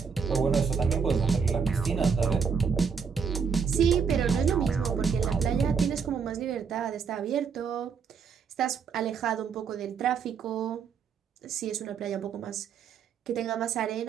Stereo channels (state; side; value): quieter; left; 6.2 dB